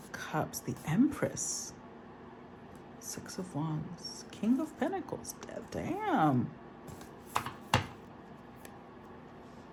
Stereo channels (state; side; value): identical; both; correlation 1.00